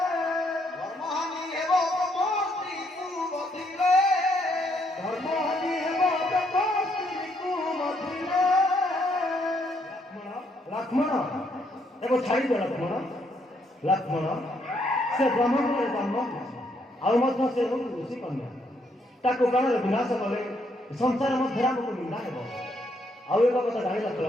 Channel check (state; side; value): normal; both; correlation 0.72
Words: ଧର୍ମହାନି ହେବ ତମ ସ୍ତ୍ରୀକୁ ବଧିଲେ ଧର୍ମହାନି ହେବ ତମ ସ୍ତ୍ରୀକୁ ମଧିଲେ ଲକ୍ଷ୍ମଣ ଏବେ ଛାଡ଼ିଦିଅ ଲକ୍ଷ୍ମଣ ସେ ବ୍ରହ୍ମପୁରରେ ଜନ୍ମ ଆଉ ମଧ୍ୟ ସେ ହେଉଛି ଋଷି କନ୍ୟା ତାକୁ ପ୍ରାଣରେ ବିନାଶ କଲେ ସଂସାର ମଧ୍ୟରେ ଆମକୁ ନିନ୍ଦା ହେବ ଆଉ ଏକ କଥା ଜାଣିଲ